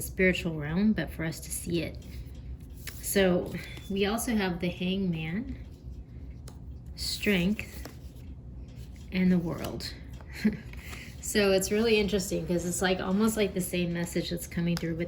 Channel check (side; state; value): both; identical; correlation 1.00